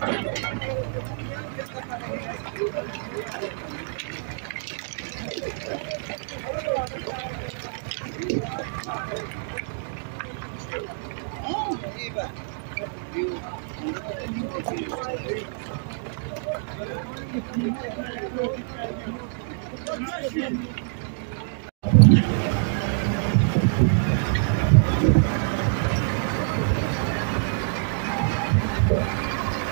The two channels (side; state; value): left; silent; digital silence